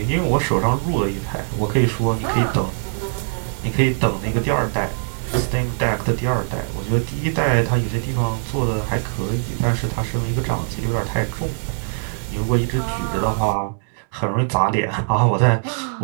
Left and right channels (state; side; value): silent; left; digital silence